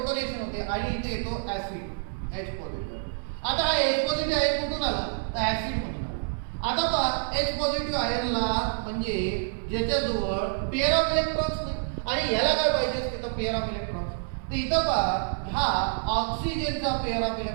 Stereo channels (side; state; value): left; silent; digital silence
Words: होते आणि इथे येतो ऍसिड H पॉझिटिव्ह. आता हा H पॉझिटिव्ह आयन कुठून आला, तर ऍसिड मधून आला. आता पहा H पॉझिटिव्ह आयनला म्हणजे ज्याच्याजवळ पेअर ऑफ इलेक्ट्रॉन्स नाही आणि ह्याला काय पाहिजे असते तर पेअर ऑफ इलेक्ट्रॉन्स. तर इथं पहा हा ऑक्सिजनचा पेअर ऑफ